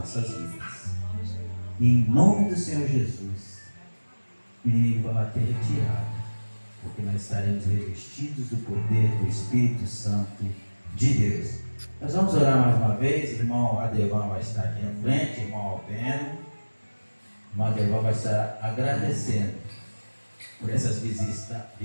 vidas. E em nome do Senhor Jesus, o inimigo vai bater retirado, porque nós estaremos revestidos do poder do Espírito Santo de Deus. Nós vamos orar mais uma vez. Irmão Adevan vai estar aqui na frente, irmão Albeno. Irmão Adevan vai estar agradecendo por essas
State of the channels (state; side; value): inverted; both; correlation -1.00